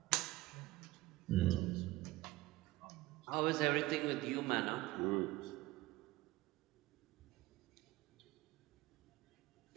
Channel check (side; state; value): left; quieter; 18.8 dB